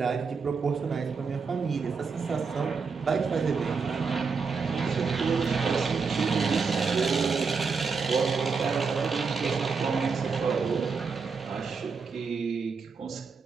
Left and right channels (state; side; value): quieter; left; 5.1 dB